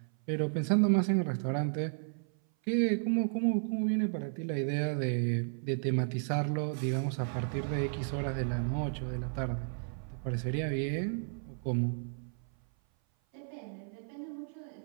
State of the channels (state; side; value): silent; left; 56 dB below the other